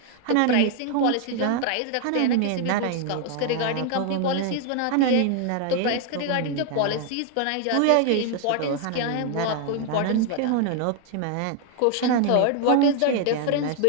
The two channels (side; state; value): both; different; correlation 0.00